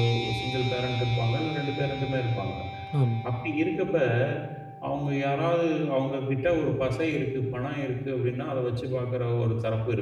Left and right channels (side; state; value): both; identical; correlation 1.00